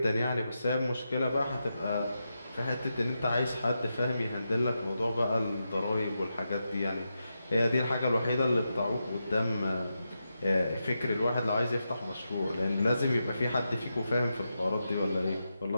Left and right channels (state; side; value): inverted; both; correlation -0.87